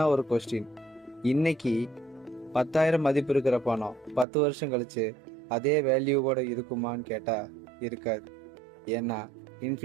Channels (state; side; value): drops out; left; at 4.2 s